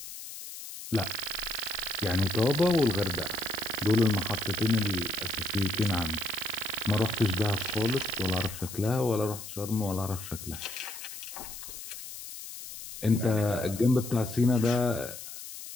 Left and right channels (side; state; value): left; noise; hiss, 11 dB below the sound